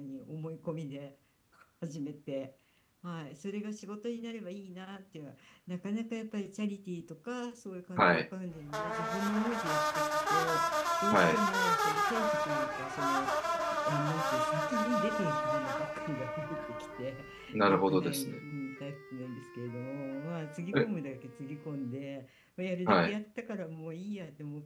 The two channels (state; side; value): identical; both; correlation 1.00